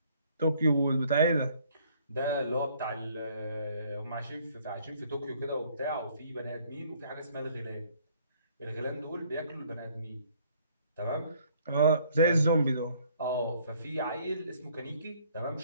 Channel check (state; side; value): inverted; both; correlation -0.62